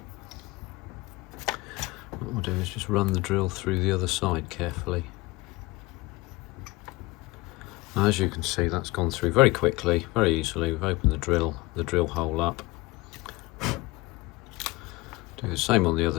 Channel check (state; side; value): quieter; right; 21.6 dB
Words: What we'll do is just run the drill through the other side carefully. Now, as you can see, that's gone through very quickly, very easily. We've opened the drill hole up. Do the same on the other